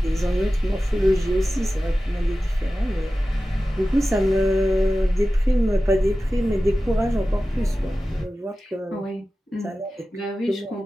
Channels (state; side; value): normal; both; correlation 0.95